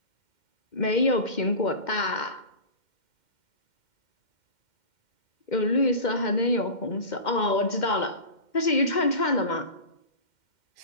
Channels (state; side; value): late; right; 2.1 ms